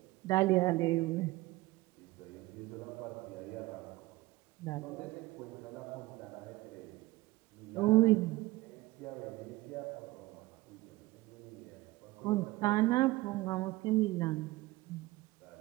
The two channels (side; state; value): left; quieter; 19.6 dB